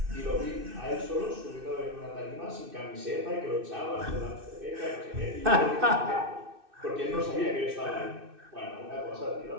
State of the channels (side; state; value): left; late; 2.6 ms